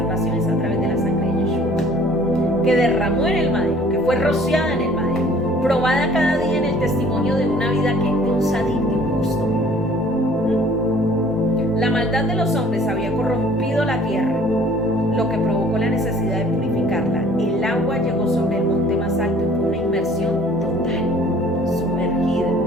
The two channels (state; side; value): normal; both; correlation 0.53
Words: es a través de la sangre de Yeshua, que derramó en el madero, que fue rociada en el madero, probada cada día en el testimonio de una vida de un sadí, de un justo. La maldad de los hombres había corrompido la tierra, lo que provocó la necesidad de purificarla. El agua llegó sobre el monte más alto y fue una inmersión total, sumergida.